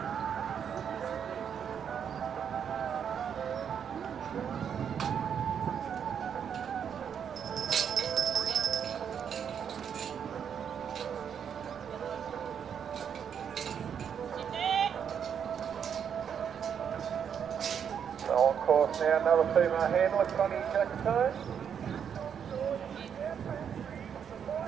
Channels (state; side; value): quieter; left; 7.9 dB